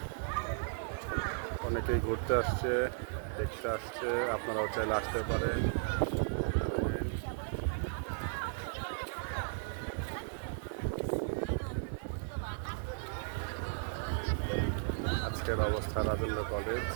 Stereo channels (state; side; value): silent; left; 54 dB below the other